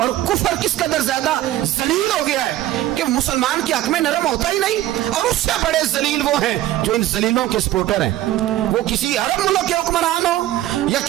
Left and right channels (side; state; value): left; quieter; 14.3 dB